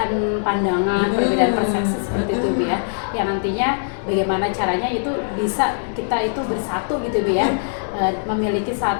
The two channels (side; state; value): right; silent; digital silence